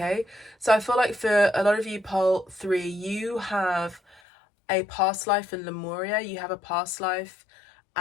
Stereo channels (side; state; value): right; drops out; at 4.2 s